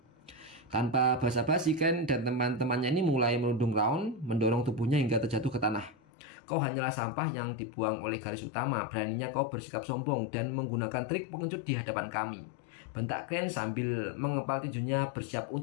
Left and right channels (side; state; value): right; drops out; at 6.0 s